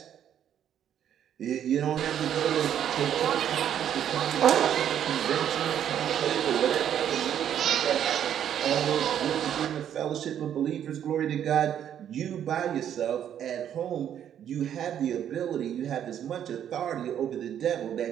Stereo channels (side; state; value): left; quieter; 9.8 dB